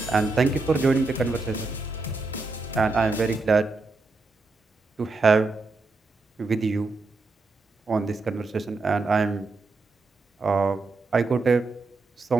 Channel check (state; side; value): quieter; left; 3.6 dB